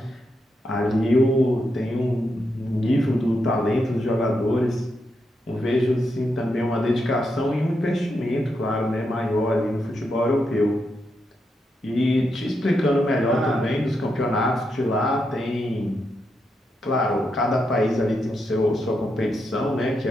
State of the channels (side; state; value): both; normal; correlation 0.83